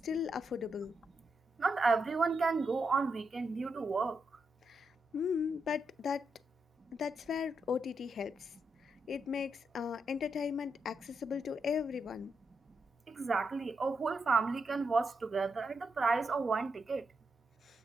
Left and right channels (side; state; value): both; normal; correlation 0.83